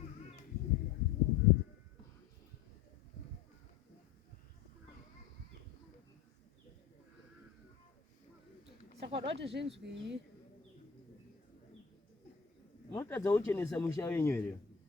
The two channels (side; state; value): right; quieter; 7.3 dB